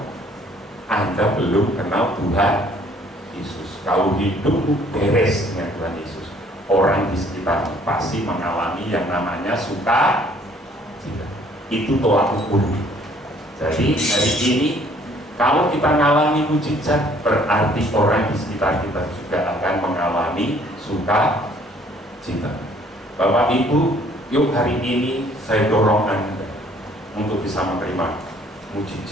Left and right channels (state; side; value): normal; both; correlation 0.60